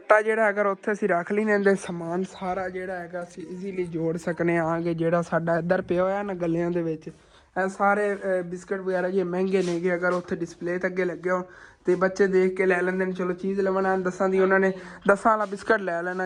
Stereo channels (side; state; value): both; identical; correlation 1.00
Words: ਜਿਹੜਾ ਅਗਰ ਉੱਥੇ ਅਸੀਂ ਰੱਖ ਲਈ ਨੇ ਸਮਾਨ ਸਾਰਾ ਜਿਹੜਾ ਹੈਗਾ ਅਸੀਂ ਈਜ਼ੀਲੀ ਜੋੜ ਸਕਨੇ ਆਂਗੇ। ਜਿਹੜਾ ਸਾਡਾ ਇੱਧਰ ਪਿਆ ਹੋਇਆ ਨਾ ਗੱਲਿਆਂ ਦੇ ਵਿੱਚ, ਇਹ ਸਾਰੇ ਬਿਸਕਟ ਵਗੈਰਾ ਜੇ ਮਹਿੰਗੇ ਨੇਗੇ, ਅਗਰ ਉੱਥੇ ਡਿਸਪਲੇ ਤੇ ਅੱਗੇ ਲੱਗੇ ਹੋਣ ਤੇ ਬੱਚੇ ਦੇਖ ਕੇ ਲੈ ਲੈਂਦੇ ਨੇ। ਚਲੋ ਚੀਜ਼ ਲਵਣਾ 10 ਦੀ ਉਹਨਾਂ ਨੇ 10 ਵਾਲਾ ਬਿਸਕਟ ਲੈ